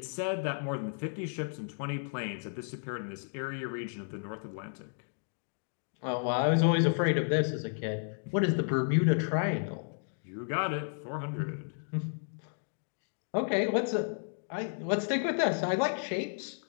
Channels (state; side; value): silent; right; digital silence